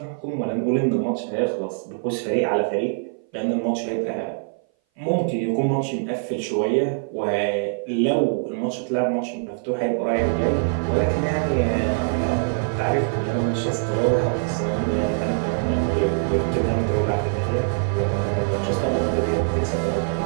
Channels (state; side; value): silent; left; 58 dB below the other